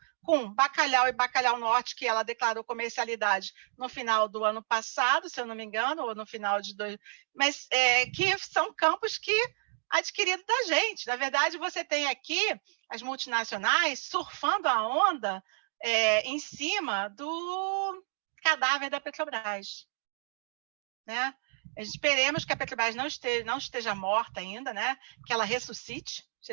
com Bacalhau e Bacalhau Norte, que ela declarou comercialidade no final do ano passado, se eu não me engano, ou no final de mas que são campos que adquiridos da gente. Na verdade, você tem aqui as multinacionais surfando a onda em cima do cadáver da Petrobras, né? Esperemos que a Petrobras não esteja morta ainda, né? Que ela ressuscite.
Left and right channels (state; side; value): silent; left; digital silence